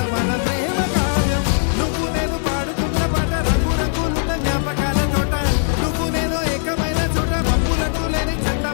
మన ప్రేమ కావ్యం నువ్వు నేను పాడుతున్న పాట రంగు రంగులున్న జ్ఞాపకాల తోట నువ్వు నేను ఏకమైన చోట మబ్బులట్టు లేని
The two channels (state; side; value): silent; right; 66 dB below the other